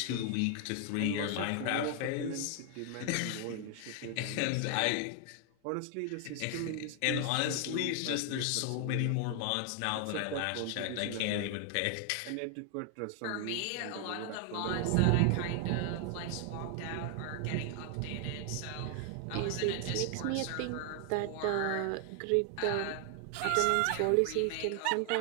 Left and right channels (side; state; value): both; different; correlation 0.00